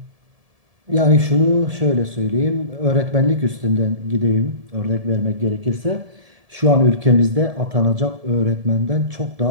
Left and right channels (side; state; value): left; late; 1.7 ms